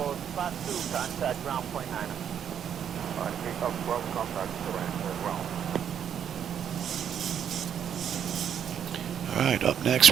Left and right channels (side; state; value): left; quieter; 8.7 dB